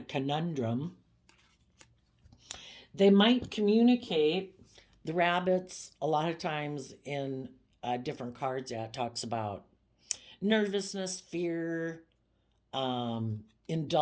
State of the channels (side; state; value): both; identical; correlation 1.00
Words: conundrum. They might communicate. The rabbits, a lot of times in different cards, it talks about nervousness, fear,